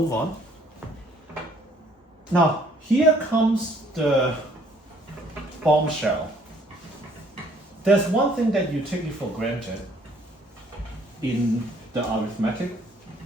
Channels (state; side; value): normal; both; correlation 0.62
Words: on. Now, here comes the bombshell. There's one thing that you take it for granted in the arithmetic